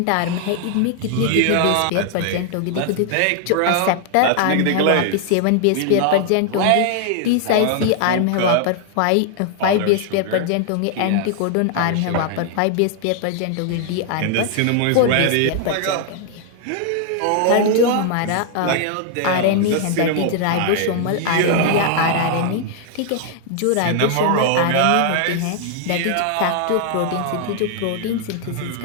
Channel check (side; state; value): both; different; correlation 0.00